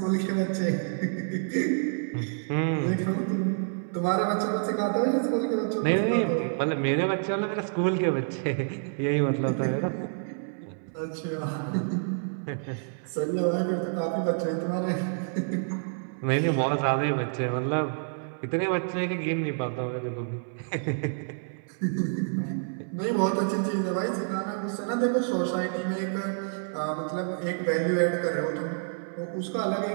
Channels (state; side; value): silent; left; 59 dB below the other